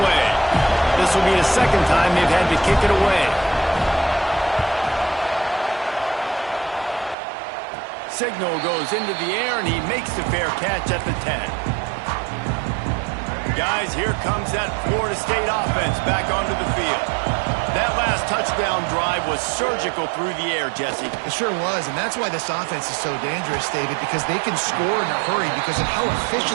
This will be the second time they've had to kick it away. Signal goes into the air, and he makes the fair catch at the 10. Guys, here comes that Florida State offense back onto the field. That last touchdown drive was surgical through the air, Jesse. It sure was, and that's why this offense is so dangerous, David, because they can score in a hurry because of how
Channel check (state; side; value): drops out; left; at 7.2 s